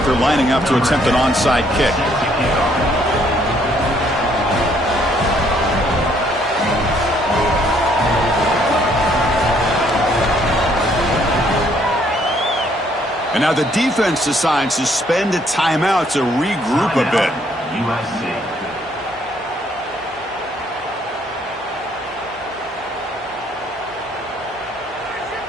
they're lining up to attempt an onside kick. And now the defense decides to spend a timeout to regroup a bit. USC.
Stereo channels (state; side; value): normal; both; correlation 0.66